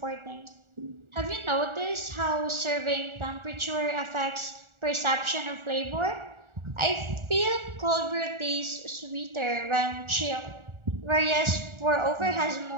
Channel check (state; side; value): late; left; 1.4 ms